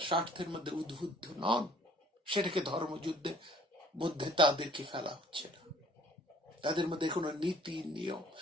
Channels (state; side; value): normal; both; correlation 0.55